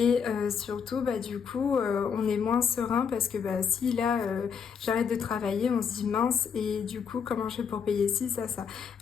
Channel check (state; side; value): quieter; right; 6.7 dB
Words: surtout bah du coup on est moins serein parce que bah si là j'arrête de travailler, on se dit mince et du coup comment je fais pour payer ci, ça.